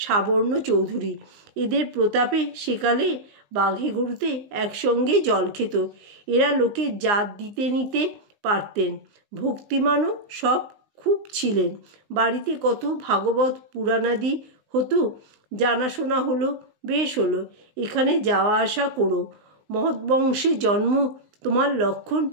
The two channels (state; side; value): late; left; 19 ms